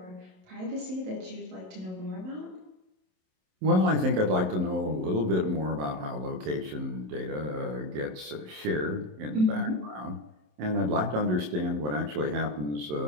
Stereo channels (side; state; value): left; late; 27 ms